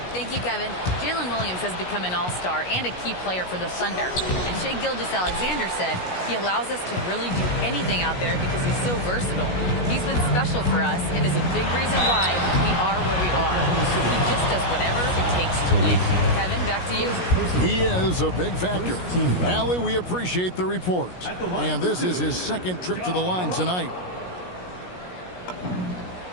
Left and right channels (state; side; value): late; right; 17 ms